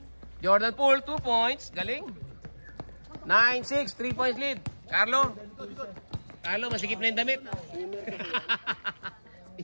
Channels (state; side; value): inverted; both; correlation -1.00